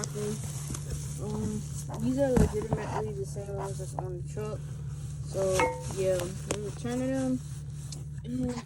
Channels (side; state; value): both; identical; correlation 1.00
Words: These are legitimately the same ones that's on the truck. So yeah, we're returning them.